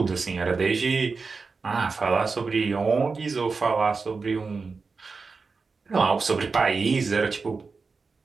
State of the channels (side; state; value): left; quieter; 4.5 dB